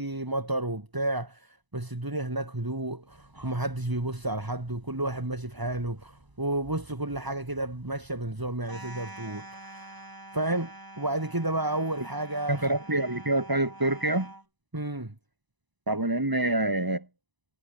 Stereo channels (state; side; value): late; left; 1.0 ms